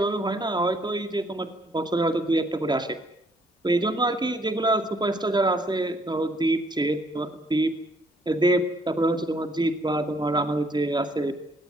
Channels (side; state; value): both; normal; correlation 0.66